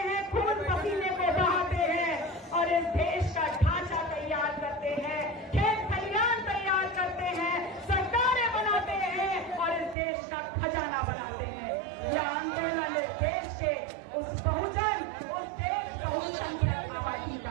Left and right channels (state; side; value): drops out; left; at 10.0 s